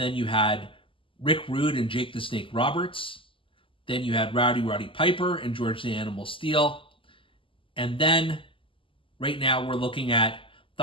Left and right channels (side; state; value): right; late; 0.25 ms